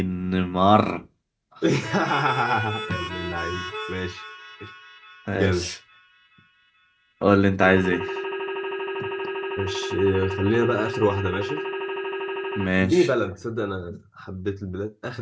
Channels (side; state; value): both; identical; correlation 1.00